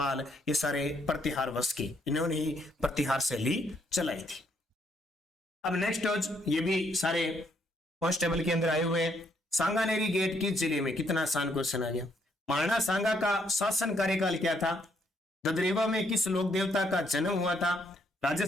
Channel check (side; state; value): both; normal; correlation 0.72